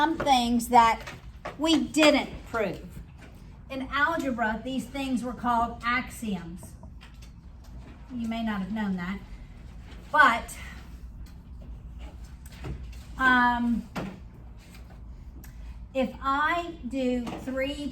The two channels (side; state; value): both; identical; correlation 1.00